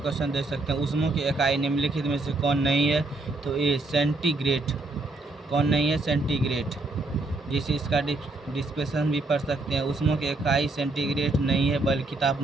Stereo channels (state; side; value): quieter; left; 3.1 dB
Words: देख सकते हैं। ऊष्मा की इकाई निम्नलिखित में से कौन नहीं है? तो ए सेंटीग्रेड। कौन नहीं है? सेंटीग्रेड। जिसे इसका डिस्पेशन भी पढ़ सकते हैं। ऊष्मा की इकाई सेंटीग्रेड नहीं है, बल्कि